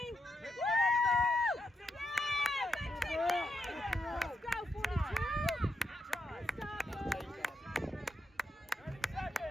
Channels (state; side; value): normal; both; correlation 0.81